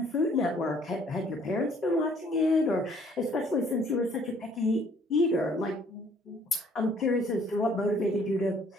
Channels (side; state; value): both; normal; correlation 0.60